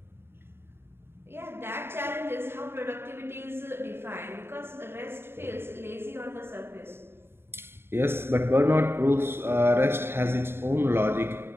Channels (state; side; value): late; left; 0.11 ms